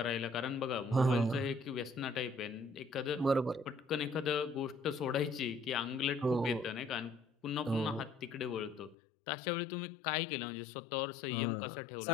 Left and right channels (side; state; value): right; drops out; at 9.0 s